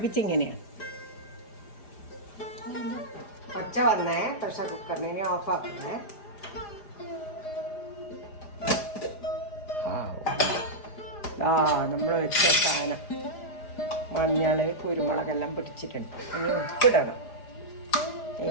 ഒച്ച വന്നേ പ്രഷർ കുക്കറിനെ. ഇനി ഓഫാക്കുന്നേ. നമ്മൾ വെച്ച സാധനം മഞ്ഞൾ കുരുമുളകെല്ലാം പിടിച്ചിട്ടുണ്ട്. ഇനി ഉപ്പിടണം.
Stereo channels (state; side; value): late; right; 4.9 ms